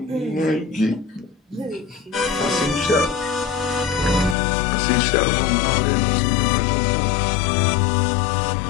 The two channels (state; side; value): drops out; right; at 4.4 s